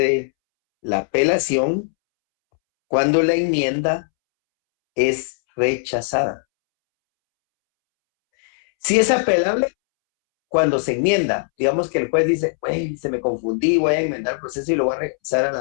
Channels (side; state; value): right; silent; 66 dB below the other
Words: la apelación cuando la enmienda es rechazada. Si es apelable, cuando se enmienda, digamos que el juez dice, güey, se me confundí, voy a enmendar el proceso y lo voy a regresar a